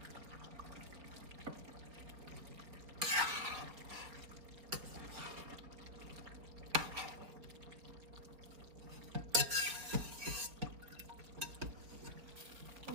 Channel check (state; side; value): late; left; 4.7 ms